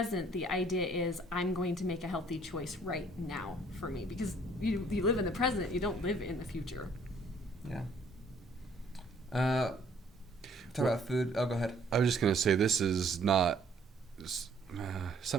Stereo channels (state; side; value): normal; both; correlation 0.61